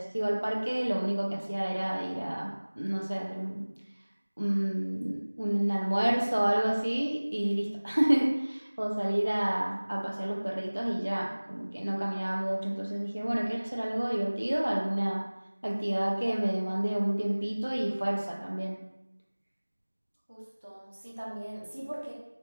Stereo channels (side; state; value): both; inverted; correlation -1.00